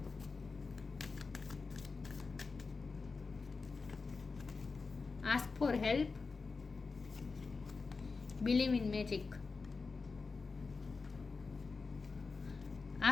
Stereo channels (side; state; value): right; quieter; 4.4 dB